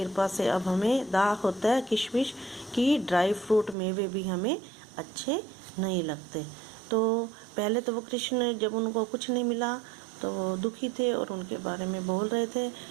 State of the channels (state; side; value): drops out; left; at 3.8 s